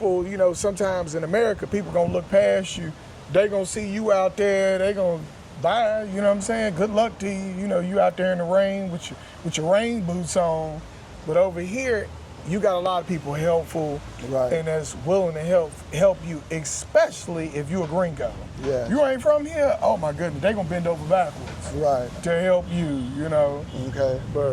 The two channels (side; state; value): both; identical; correlation 1.00